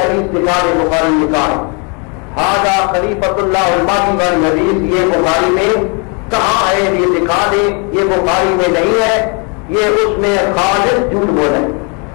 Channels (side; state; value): right; quieter; 34.5 dB